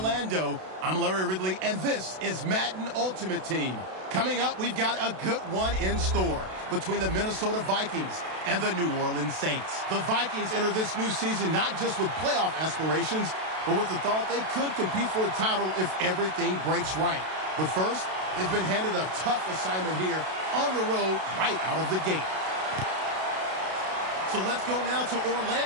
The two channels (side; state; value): left; late; 32 ms